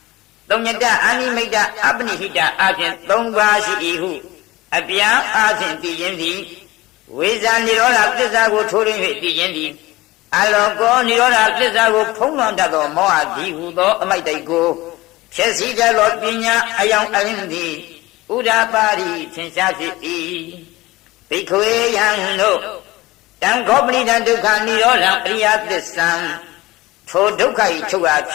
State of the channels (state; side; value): quieter; right; 19.4 dB